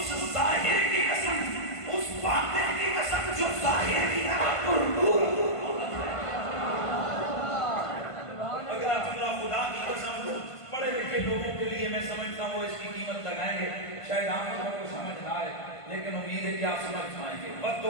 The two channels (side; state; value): right; late; 1.5 ms